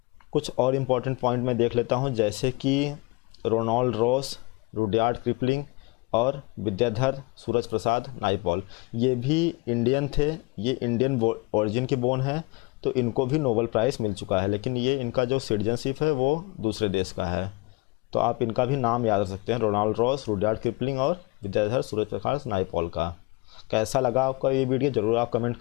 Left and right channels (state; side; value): quieter; right; 26.5 dB